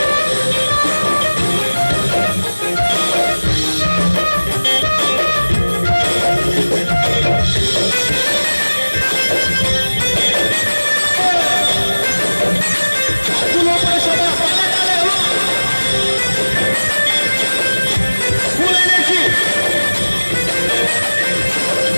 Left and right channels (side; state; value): both; inverted; correlation -1.00